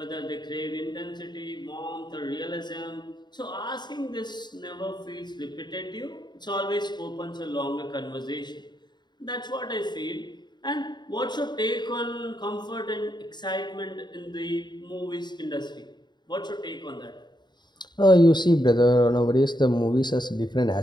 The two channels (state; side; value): late; right; 0.21 ms